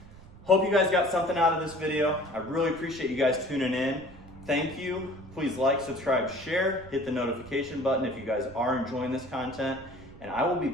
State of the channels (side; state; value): right; noise; rumble, 20 dB below the sound